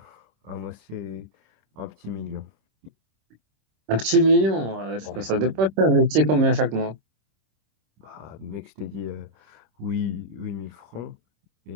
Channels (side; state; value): left; late; 26 ms